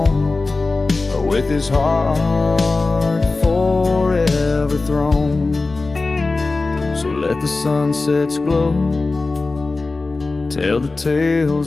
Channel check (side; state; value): right; quieter; 3.6 dB